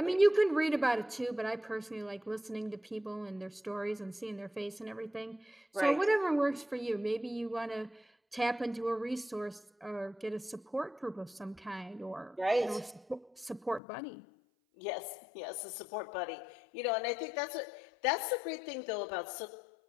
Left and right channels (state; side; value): drops out; right; at 13.8 s